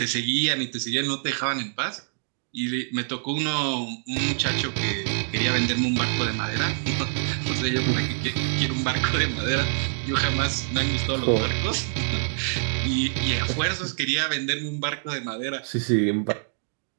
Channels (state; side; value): silent; left; digital silence